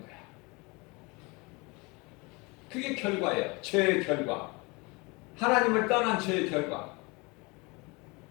거야. 그게 결과예요. 죄의 결과. 하나님을 떠난 죄의 결과.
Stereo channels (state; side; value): quieter; right; 27.1 dB